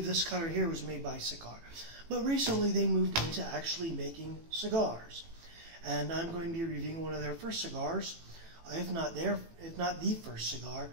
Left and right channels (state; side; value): late; left; 18 ms